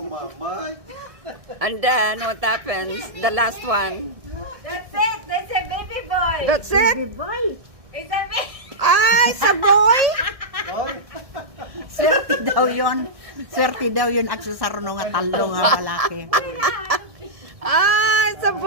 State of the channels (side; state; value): left; late; 1.6 ms